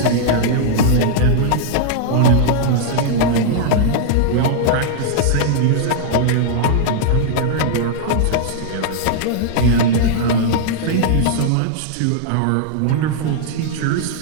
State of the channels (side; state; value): both; different; correlation -0.01